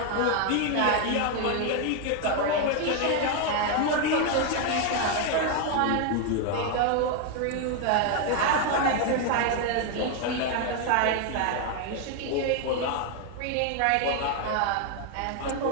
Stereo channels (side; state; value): both; different; correlation 0.01